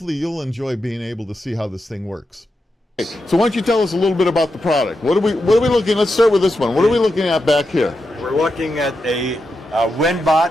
you'll enjoy being able to see how this thing works. So why don't you tell us a little bit about the product? What are we looking? Let's start with this one. What are we looking at back here? We're looking at a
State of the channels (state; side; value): normal; both; correlation 0.87